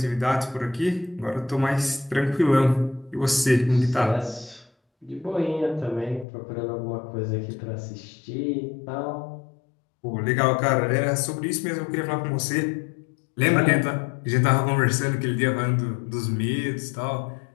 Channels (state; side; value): drops out; right; at 6.2 s